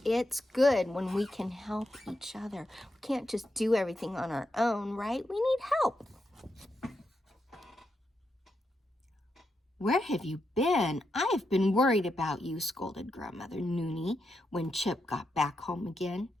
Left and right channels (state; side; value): normal; both; correlation 0.84